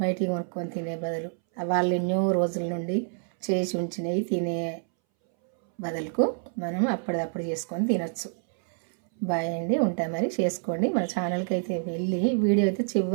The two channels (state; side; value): silent; left; 60 dB below the other